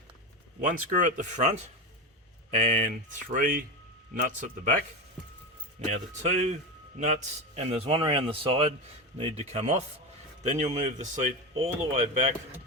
one screw at the front and three nuts at the back. Now the two nuts, and there's one around the side, need to come off. Then you'll move the seat all the way back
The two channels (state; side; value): normal; both; correlation 0.18